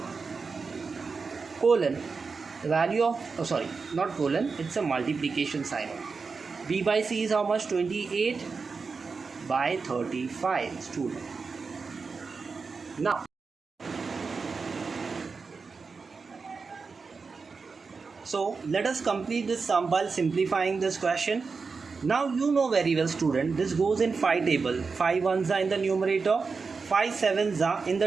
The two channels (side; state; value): left; quieter; 4.8 dB